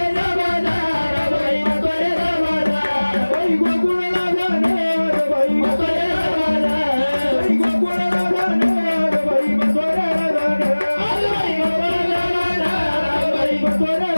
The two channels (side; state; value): both; inverted; correlation -1.00